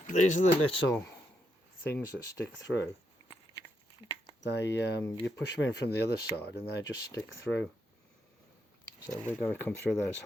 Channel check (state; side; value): normal; both; correlation 0.80